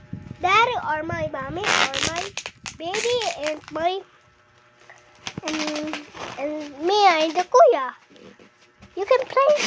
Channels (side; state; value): both; identical; correlation 1.00